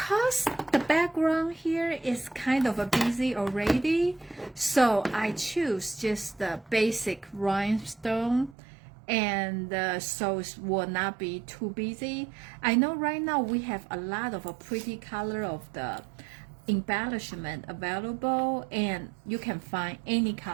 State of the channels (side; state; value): left; drops out; at 8.6 s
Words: the background here is kind of a busy already, so I choose just the basic rhinestone, and so it will not be too busy. I know right now we have a lot of a pretty color of the embellishment available, and you can find